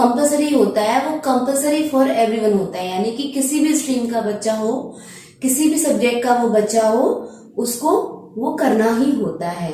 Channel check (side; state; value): both; identical; correlation 1.00